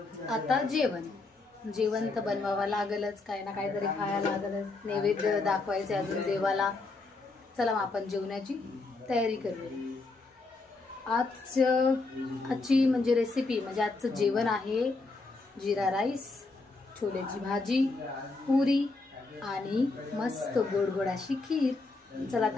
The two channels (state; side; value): quieter; right; 3.5 dB